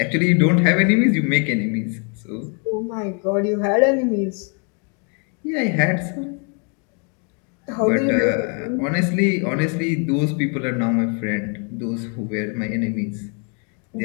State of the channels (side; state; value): right; quieter; 37.6 dB